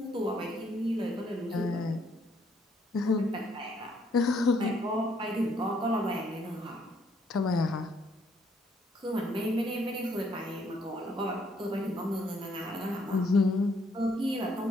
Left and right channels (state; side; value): normal; both; correlation 0.69